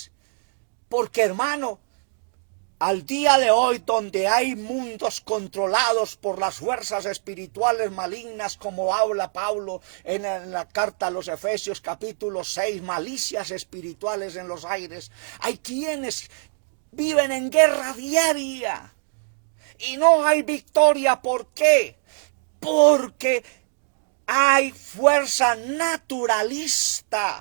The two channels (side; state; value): left; silent; digital silence